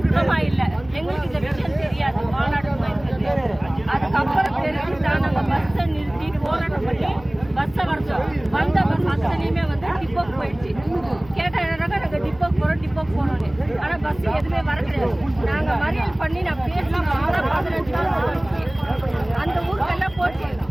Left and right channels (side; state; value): left; noise; hum, 20 dB below the sound